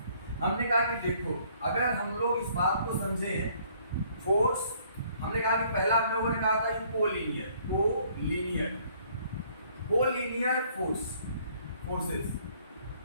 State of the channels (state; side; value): inverted; both; correlation -0.62